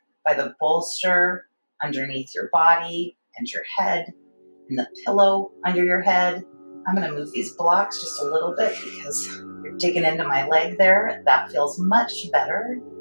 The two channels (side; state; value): both; inverted; correlation -1.00